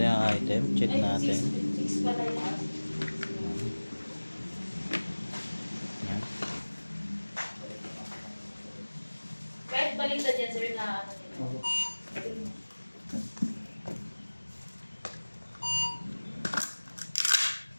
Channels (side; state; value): both; inverted; correlation -1.00